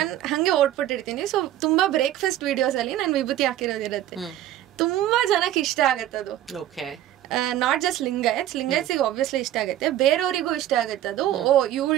ಹಂಗೆ ಓಡ್ಬಿಟ್ಟಿರ್ತೀನಿ. ಸೊ ತುಂಬಾ ಬ್ರೇಕ್ಫಾಸ್ಟ್ ವಿಡಿಯೋಸ್ ಅಲ್ಲಿ ನಾನು ವಿಭೂತಿ ಹಾಕಿರೋದಿರತ್ತೆ. ತುಂಬಾ ಜನಕ್ಕೆ ಇಷ್ಟ ಆಗತ್ತದು. ನಾಟ್ ಜಸ್ಟ್ ಲಿಂಗಾಯತ್ಸಿಗೆ ಆಬ್ವಿಯಸ್ಲಿ ಇಷ್ಟ ಆಗುತ್ತೆ, ಬೇರೆಯವರಿಗೂ ಇಷ್ಟ ಆಗುತ್ತೆ ಅದು. ಓ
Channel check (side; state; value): left; quieter; 12.8 dB